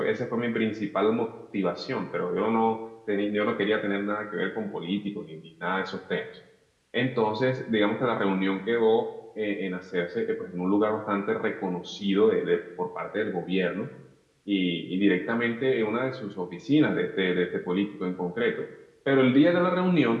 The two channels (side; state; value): both; identical; correlation 1.00